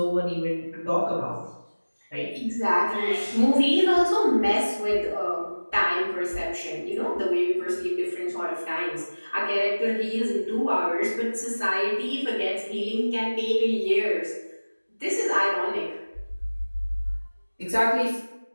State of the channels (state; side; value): inverted; both; correlation -1.00